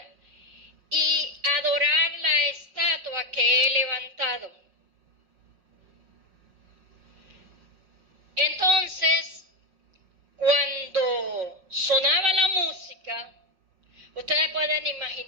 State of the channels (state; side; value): late; left; 5.5 ms